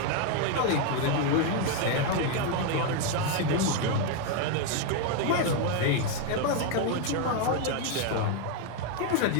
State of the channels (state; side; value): different; both; correlation 0.01